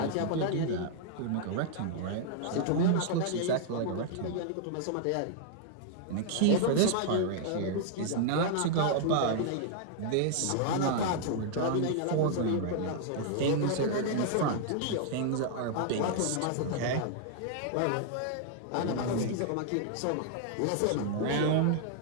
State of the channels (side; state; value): both; different; correlation 0.00